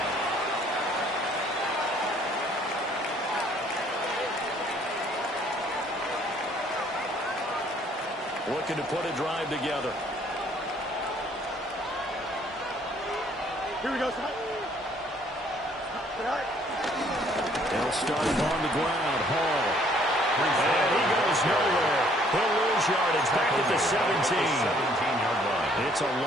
Looking to put a drive together. Here we go, son. They'll start him on the ground. Hall. And he goes nowhere. He'll lose yardage back at the 17. 17-yard line. It's a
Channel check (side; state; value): both; normal; correlation 0.62